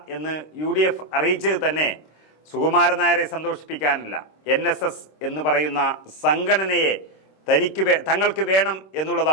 എന്ന് UDF അറിയിച്ചത് തന്നെ സുകുമാരൻ നായരെ സന്തോഷിപ്പിക്കാനല്ല, NSS എന്ന് പറയുന്ന സംഘടനയെ തങ്ങൾക്ക് വേണം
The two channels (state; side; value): late; right; 26 ms